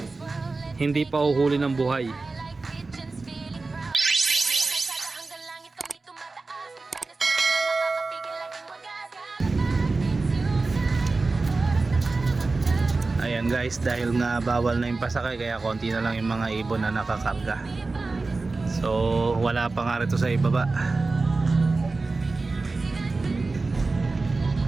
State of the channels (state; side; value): quieter; left; 3.7 dB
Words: hindi pa uhuli ng buhay. Ayan guys, dahil nga bawal na yung pasakay, kaya konti na lang yung mga ibon na nakakarga. So wala pa nga rito sa ibaba.